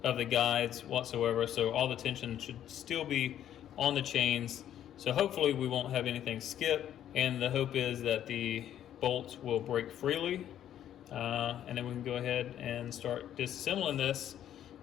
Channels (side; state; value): right; quieter; 10.8 dB